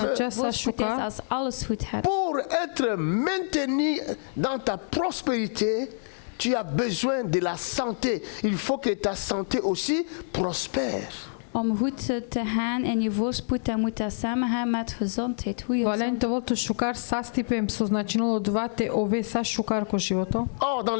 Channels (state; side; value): silent; right; 60 dB below the other